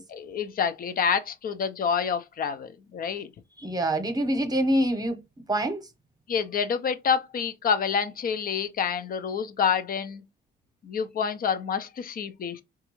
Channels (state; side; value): quieter; right; 4.0 dB